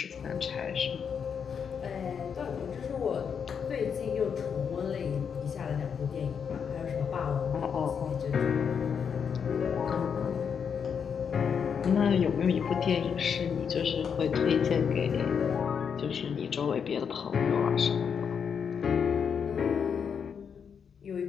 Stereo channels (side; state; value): right; quieter; 7.0 dB